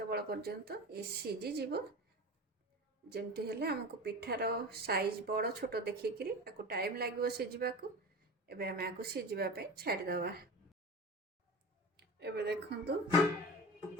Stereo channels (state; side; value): normal; both; correlation 0.31